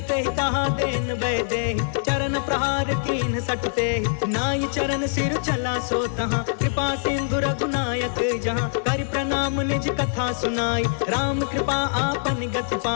ते कहा देन बै दे, चरण प्रहार कीन सटते, नाई चरण सिर चला सो तहाँ, कृपा सिंधु रघुनायक जहाँ, कर प्रणाम निज कथा सुनाई, राम कृपा आपन गति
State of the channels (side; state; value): right; silent; 61 dB below the other